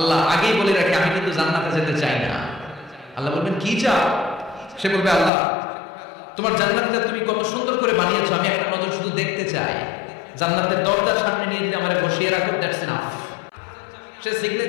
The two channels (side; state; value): right; drops out; at 5.3 s